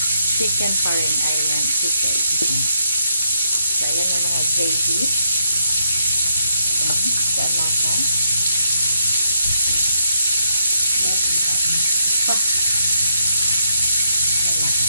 Chicken pa rin. Ayan, chicken. So, ayan yung mga gravy. Ayan. Sa alasa. Alasa.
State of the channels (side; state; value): both; inverted; correlation -0.76